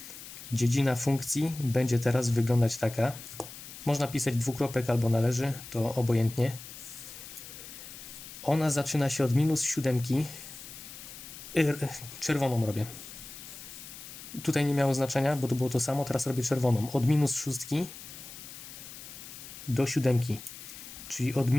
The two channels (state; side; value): noise; left; hiss, 14 dB below the sound